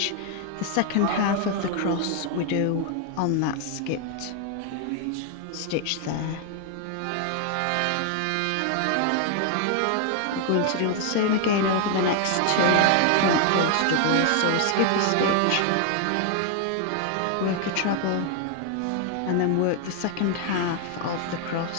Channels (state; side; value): different; both; correlation 0.00